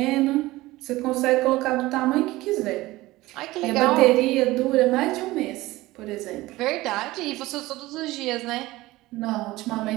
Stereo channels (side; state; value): left; quieter; 18.7 dB